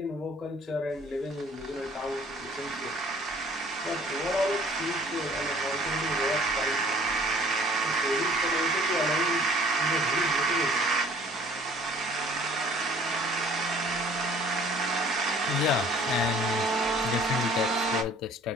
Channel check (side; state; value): both; normal; correlation 0.54